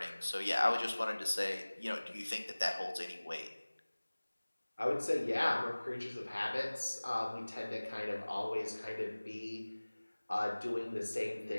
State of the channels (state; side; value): inverted; both; correlation -1.00